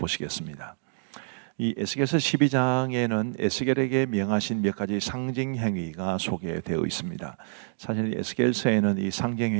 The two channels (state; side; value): silent; left; digital silence